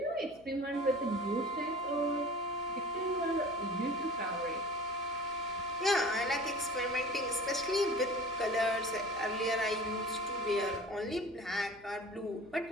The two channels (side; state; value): left; noise; hum, 27 dB below the sound